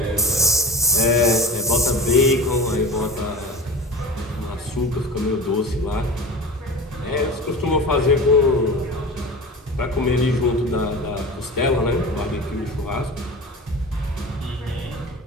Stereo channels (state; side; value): normal; both; correlation 0.33